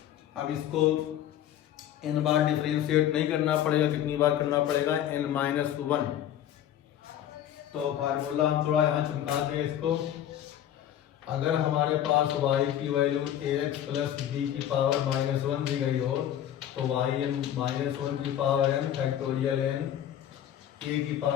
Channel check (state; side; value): quieter; right; 11.0 dB